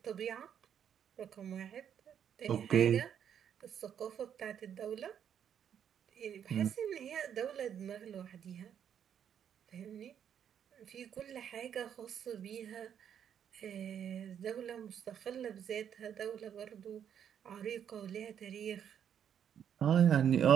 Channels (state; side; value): quieter; left; 8.8 dB